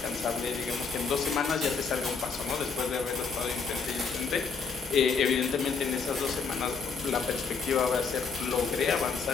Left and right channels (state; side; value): quieter; right; 5.3 dB